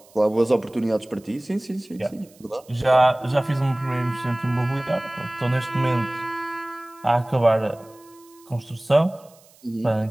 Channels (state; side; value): noise; right; hiss, 28 dB below the sound